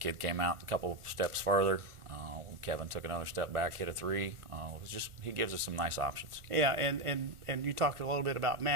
came out a couple steps farther. Kevin took another step back, hit a three. He gives us some nice options. Yeah, and you talked a little bit about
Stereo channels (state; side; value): late; left; 1.4 ms